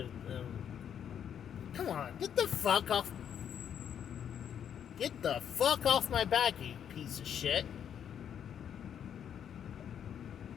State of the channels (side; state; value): right; quieter; 8.8 dB